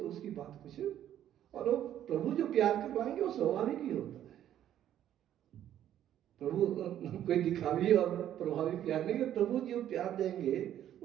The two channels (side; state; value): left; quieter; 11.2 dB